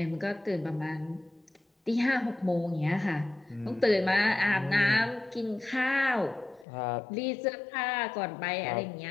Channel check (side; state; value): right; drops out; at 6.7 s